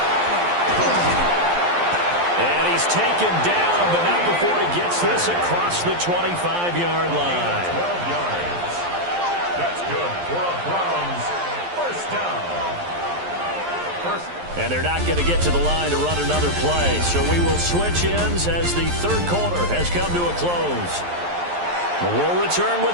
And he's taken down, but not before he gets this across the 25-yard line. 12 yards. That's good for a Browns first down. And they're not going to get to the line to run another play. So we will switch ends as the 3rd quarter has come to a close. We'll return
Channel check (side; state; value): left; late; 11 ms